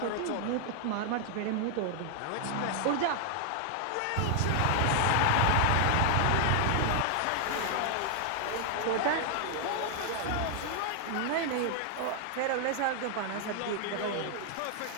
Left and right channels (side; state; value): both; different; correlation 0.00